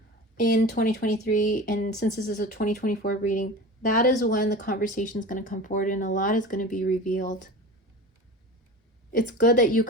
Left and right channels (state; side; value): normal; both; correlation 0.33